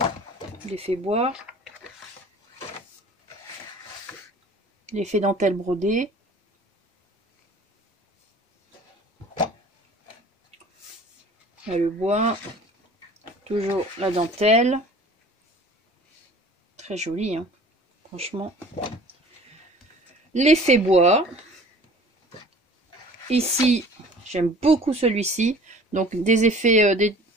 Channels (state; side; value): normal; both; correlation 0.47